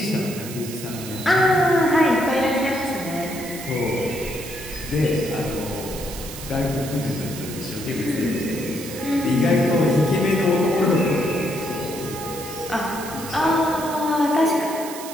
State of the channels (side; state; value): right; noise; hiss, 12 dB below the sound